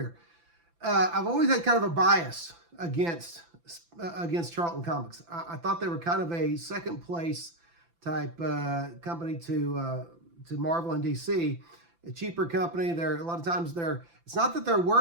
I've always had kind of a bias against Charlton Comics. I thought they were kind of a second-place type company to Marvel and DC. A cheaper company. A lot of times it's not that their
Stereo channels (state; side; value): late; left; 5.9 ms